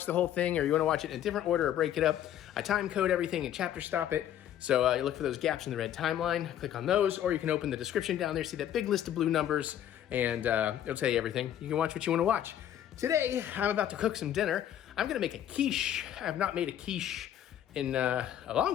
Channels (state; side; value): quieter; right; 10.9 dB